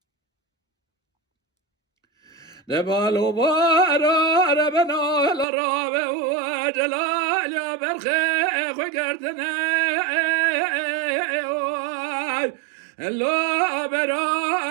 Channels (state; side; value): drops out; left; at 5.5 s